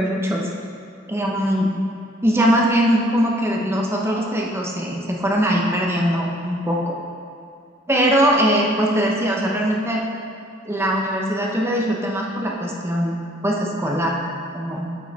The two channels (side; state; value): both; normal; correlation 0.60